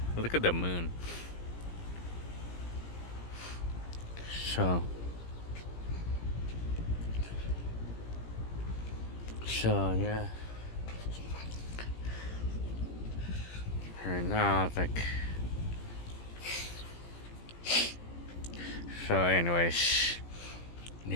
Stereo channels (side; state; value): right; late; 17 ms